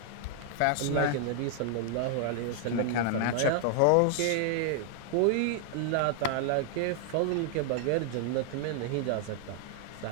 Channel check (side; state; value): both; different; correlation 0.00